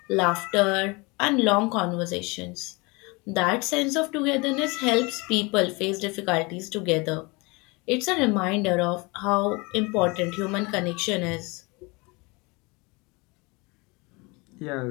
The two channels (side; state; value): right; quieter; 27.0 dB